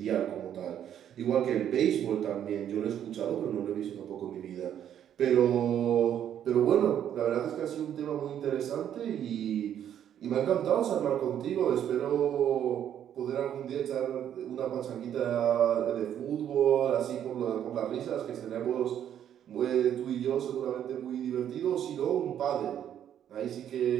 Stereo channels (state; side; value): quieter; left; 10.0 dB